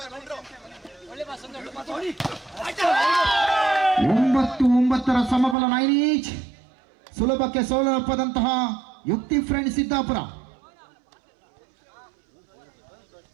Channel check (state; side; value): drops out; left; at 5.6 s